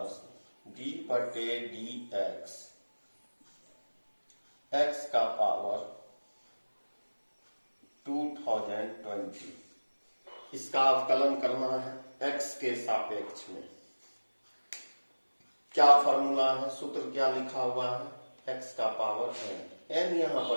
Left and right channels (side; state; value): both; inverted; correlation -1.00